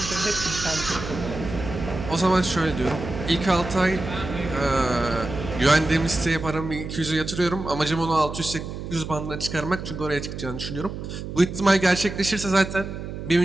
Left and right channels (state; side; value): noise; right; hum, 8 dB below the sound